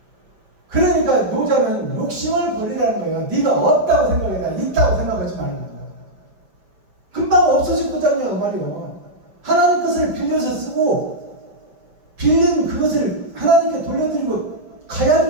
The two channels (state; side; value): late; left; 5.5 ms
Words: 그러니까 노자는 욕심을 버리라는 거예요. 네가 없다고 생각해라. 있다고 생각하지 말고. 금방 없어질 거잖아요 그 말이에요. 하나님 것을 빌려서 쓰고 빌린 그것을 하나님께 돌려드리고 가야